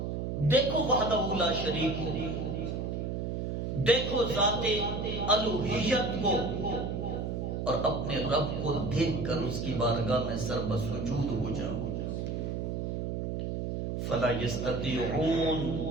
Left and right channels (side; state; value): right; noise; hum, 2 dB below the sound